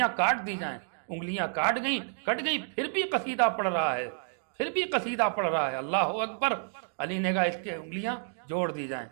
کاٹ دی جائیں۔ انگلیاں کٹ گئی، پھر بھی قصیدہ پڑھ رہا ہے، پھر بھی قصیدہ پڑھ رہا ہے، اللہ اکبر۔ علی نے کہا اس کے انگلیاں جوڑ دی جائیں،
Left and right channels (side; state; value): left; silent; 58 dB below the other